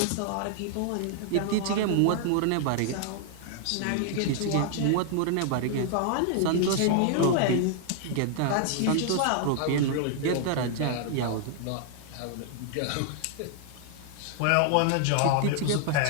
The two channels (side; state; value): both; different; correlation -0.01